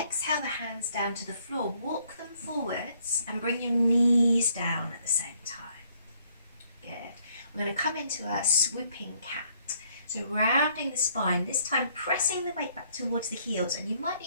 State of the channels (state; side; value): inverted; both; correlation -0.67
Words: the hands down to the floor. Walk them forwards and bring your knees down at the same time. Good. We're going to come into a swooping cat. So rounding the spine, this time pressing the weight back towards the heels, and you might